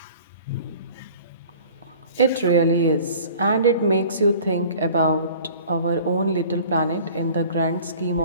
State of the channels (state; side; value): inverted; both; correlation -0.47